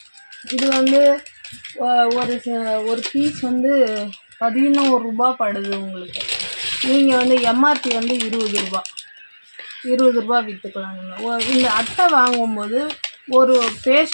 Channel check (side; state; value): both; inverted; correlation -1.00